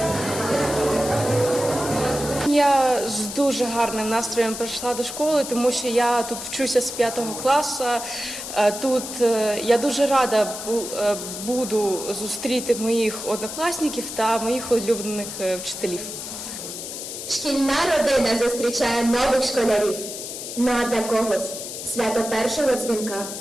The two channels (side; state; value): left; noise; hiss, 8 dB below the sound